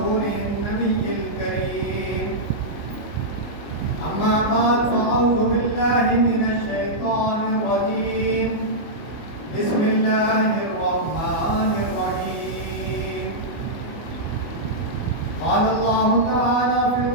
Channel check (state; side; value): late; right; 24 ms